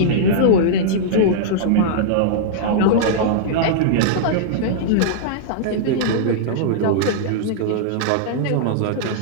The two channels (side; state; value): both; different; correlation -0.02